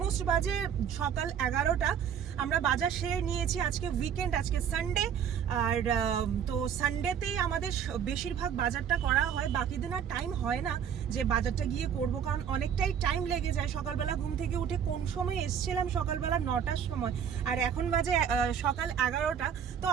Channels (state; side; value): quieter; left; 8.2 dB